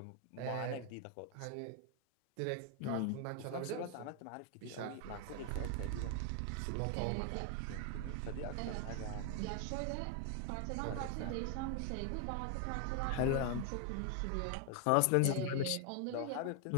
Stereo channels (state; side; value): different; both; correlation 0.00